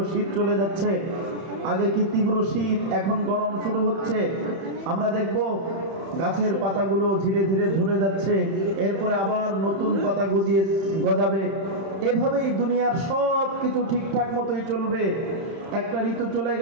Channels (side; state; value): left; late; 31 ms